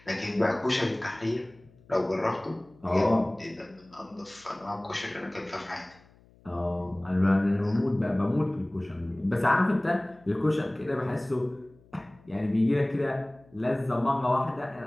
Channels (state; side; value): noise; left; hum, 28 dB below the sound